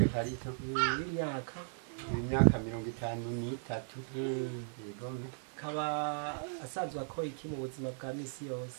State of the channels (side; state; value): left; silent; 53 dB below the other